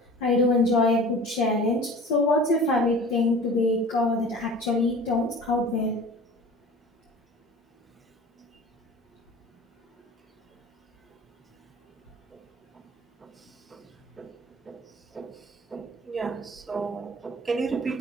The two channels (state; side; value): normal; both; correlation 0.41